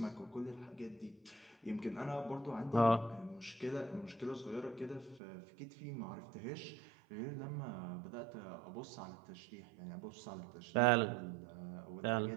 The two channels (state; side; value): drops out; left; at 5.2 s